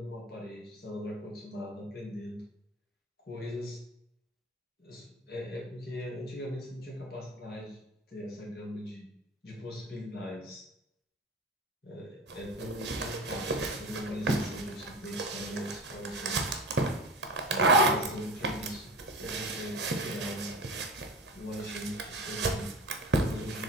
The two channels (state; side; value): normal; both; correlation 0.32